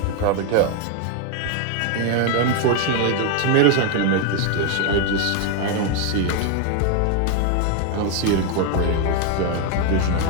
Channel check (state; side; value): different; both; correlation 0.01